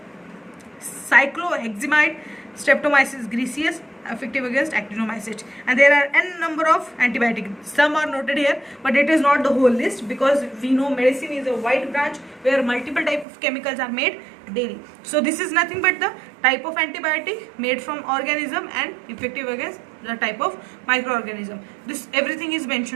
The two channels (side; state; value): left; drops out; at 13.2 s